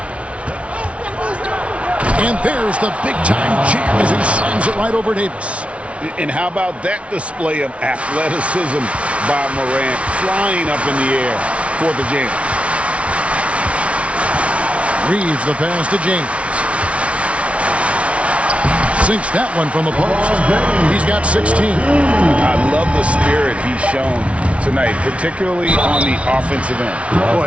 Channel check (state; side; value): late; left; 0.062 ms